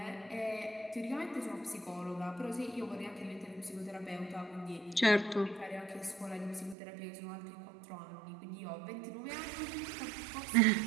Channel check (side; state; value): left; drops out; at 6.8 s